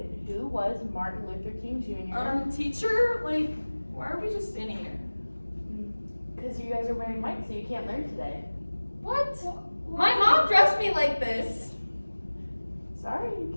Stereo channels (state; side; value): inverted; both; correlation -1.00